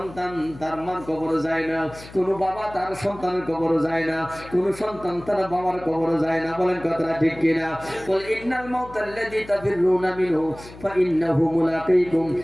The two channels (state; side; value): noise; left; hum, 18 dB below the sound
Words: তার মার কবরে যায় না, কোনো বাবা তার সন্তানের কবরে যায় না, কোনো সন্তান তার বাবার কবরে যায় না। বলেন কথাটা ঠিক কিনা? বল ইন্নাল মাউতাল্লাযী তাফিরুনা মিনহু ফাইন্নাহু মুলাকীকুম